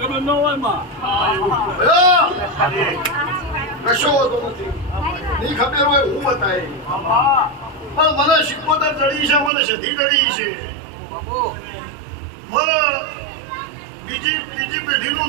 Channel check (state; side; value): drops out; left; at 9.5 s